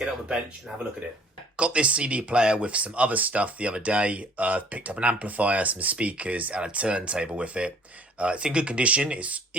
it on the bench and have a look at it. Got this CD player with some other stuff the other day. Picked up an amplifier, some speakers and a turntable with it. It's in good condition. It's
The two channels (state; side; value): normal; both; correlation 0.55